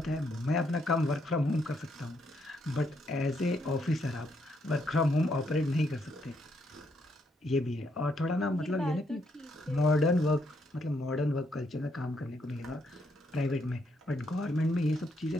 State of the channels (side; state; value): both; normal; correlation 0.75